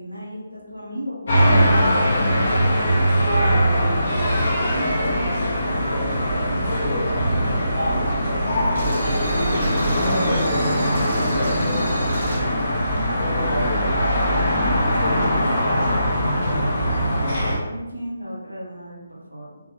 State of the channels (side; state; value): both; inverted; correlation -0.81